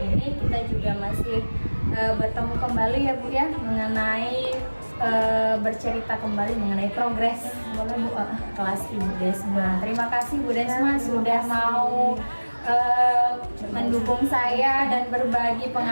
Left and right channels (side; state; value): both; inverted; correlation -1.00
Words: ini kita juga masih bertemu kembali ya Bu ya, mengenai bercerita kembali mengenai progres kelas Ibu Desma. Terima kasih Bu Desma sudah mau mendukung saya dan berbagi